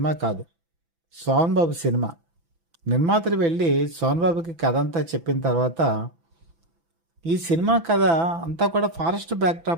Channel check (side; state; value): left; late; 6.0 ms